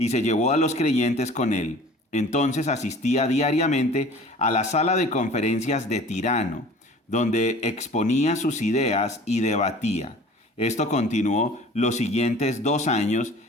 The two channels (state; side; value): normal; both; correlation 0.45